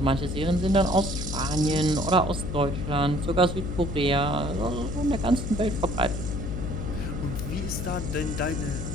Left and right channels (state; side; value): noise; left; hum, 4 dB below the sound